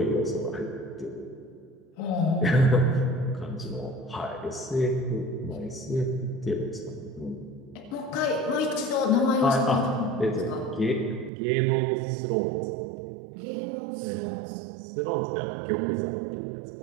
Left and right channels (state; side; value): drops out; left; at 11.3 s